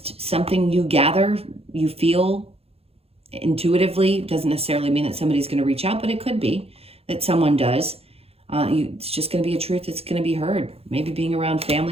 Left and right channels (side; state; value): left; late; 0.29 ms